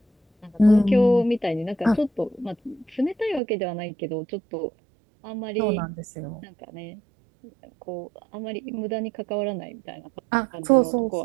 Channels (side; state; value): left; drops out; at 3.4 s